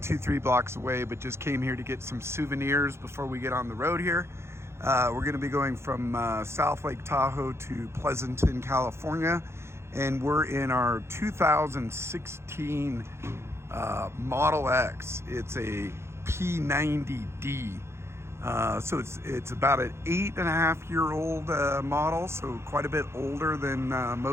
2-3 blocks away, but just came here to get some souvenirs before we get on the road here. We're going to be going from South Lake Tahoe to Pleasanton, California, and we're in our 2016 Model X. It's a P90D. So it's about an 8.5-year-old model, so quite a bit older than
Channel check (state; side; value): late; left; 0.13 ms